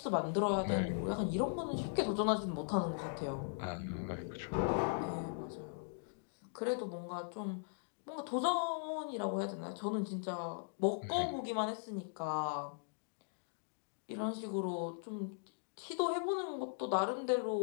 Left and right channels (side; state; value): right; silent; digital silence